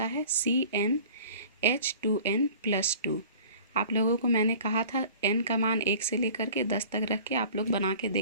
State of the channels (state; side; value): inverted; both; correlation -0.45